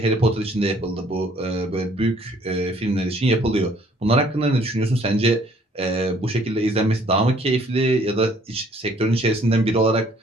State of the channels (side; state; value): both; normal; correlation 0.60